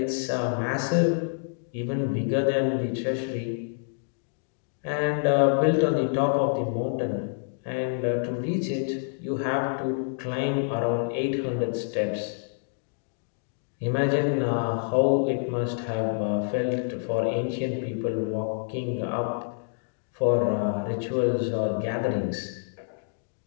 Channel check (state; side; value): silent; right; digital silence